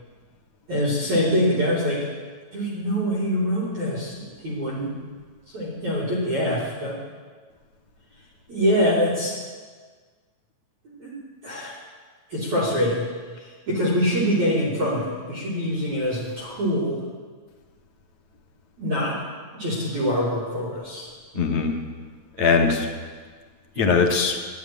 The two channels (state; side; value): late; left; 9.1 ms